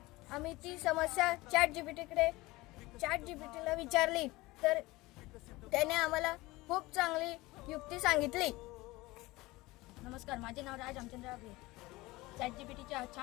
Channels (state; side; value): quieter; right; 20.6 dB